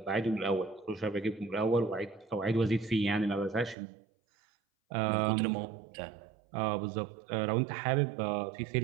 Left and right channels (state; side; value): drops out; left; at 3.8 s